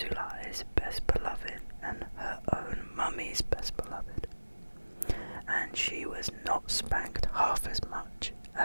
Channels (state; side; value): inverted; both; correlation -1.00